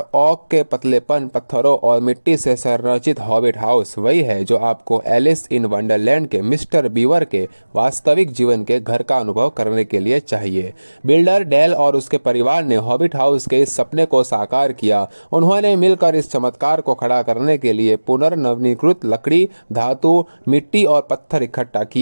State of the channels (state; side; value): inverted; both; correlation -1.00